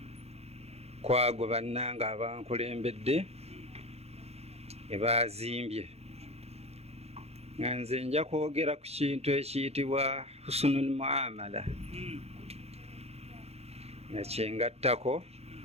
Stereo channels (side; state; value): left; late; 0.30 ms